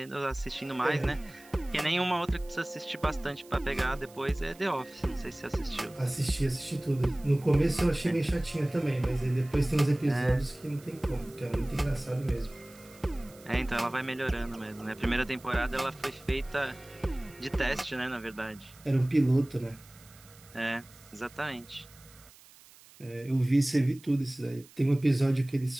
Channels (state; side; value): noise; right; hiss, 24 dB below the sound